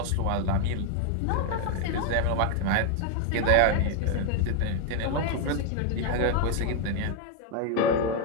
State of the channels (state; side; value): different; both; correlation 0.01